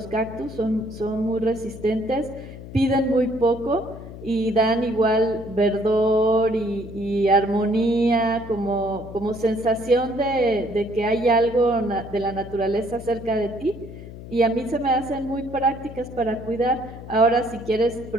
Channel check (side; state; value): left; noise; hum, 13 dB below the sound